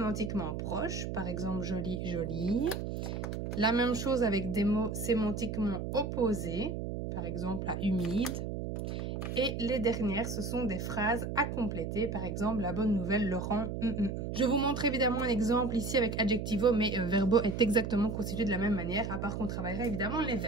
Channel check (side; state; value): right; noise; hum, 4 dB below the sound